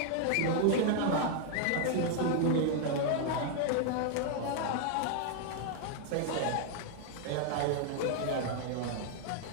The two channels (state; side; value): different; both; correlation 0.00